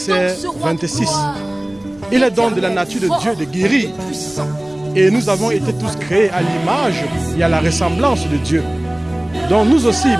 26. Il est donc de la nature de Dieu de guérir. Et nous avons été tous créés à l'image et à la ressemblance de Dieu. Donc nous aussi,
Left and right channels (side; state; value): right; noise; hum, 26 dB below the sound